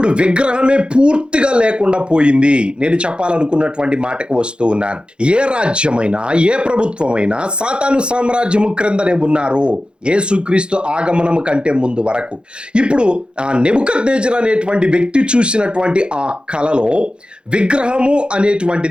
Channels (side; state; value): left; late; 0.053 ms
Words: విగ్రహమే పూర్తిగా లేకుండా పోయింది. నేను చెప్పాలనుకున్నటువంటి మాటకు వస్తూ ఉన్నాను. ఏ రాజ్యమైనా, ఏ ప్రభుత్వమైనా సాతాను సామ్రాజ్యము క్రిందనే ఉన్నారు యేసుక్రీస్తు ఆగమనము కంటే ముందు వరకు. ఇప్పుడు ఆ నెబుకద్నెజరు అనేటువంటి వ్యక్తి చూసినటువంటి ఆ కలలో విగ్రహము